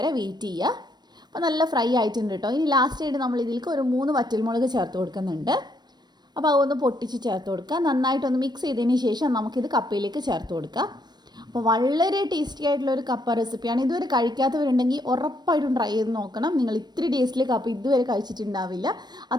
വെയിറ്റ് ചെയ്യുക. അപ്പോൾ നല്ല ഫ്രൈ ആയിട്ടുണ്ട് കേട്ടോ. ഇനി ലാസ്റ്റായിട്ട് നമ്മൾ ഇതിലേക്ക് ഒരു 3 വറ്റൽമുളക് ചേർത്ത് കൊടുക്കുന്നുണ്ട്. അപ്പോൾ അതൊന്ന് പൊട്ടിച്ച് ചേർത്ത് കൊടുക്കുക. നന്നായിട്ടൊന്ന് മിക്സ് ചെയ്തതിന് ശേഷം നമുക്കിത് കപ്പയിലേക്ക് ചേർത്ത് കൊടുക്കാം. അപ്പോൾ വളരെ ടേസ്റ്റി ആയിട്ടുള്ളൊരു കപ്പ റെസിപ്പിയാണ്. ഇതുവരെ കഴിക്കാത്തവരുണ്ടെങ്കിൽ ഉറപ്പായിട്ടും ട്രൈ ചെയ്ത് നോക്കണം. നിങ്ങൾ ഇത്ര ടേസ്റ്റിൽ കപ്പ ഇതുവരെ കഴിച്ചിട്ടുണ്ടാവില്ല.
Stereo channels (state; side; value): late; left; 0.20 ms